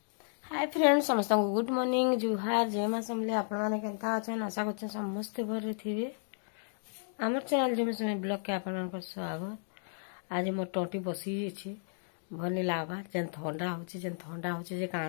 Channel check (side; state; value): right; silent; digital silence